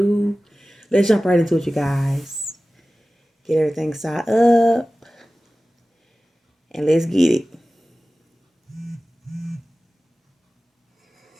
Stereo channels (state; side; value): normal; both; correlation 0.96